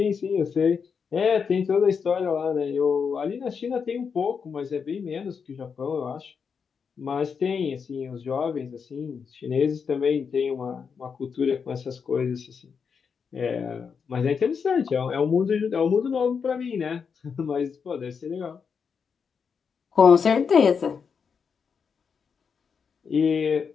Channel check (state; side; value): quieter; right; 6.2 dB